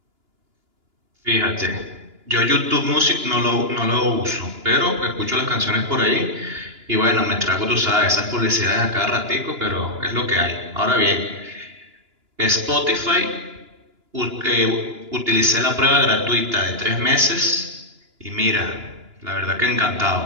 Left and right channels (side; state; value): left; late; 2.9 ms